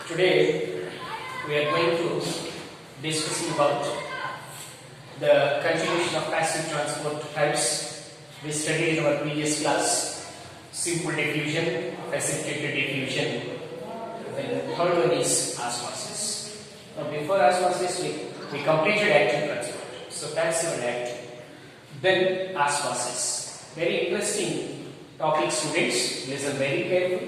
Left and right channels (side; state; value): both; identical; correlation 1.00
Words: Today we are going to discussing about the continuation of passive transport types. We studied in our previous class simple diffusion, precipitated diffusion. Then the third one is osmosis. Now before osmosis we completed active transport. So passive and active. Then osmosis. Very interesting topic, students. Listen very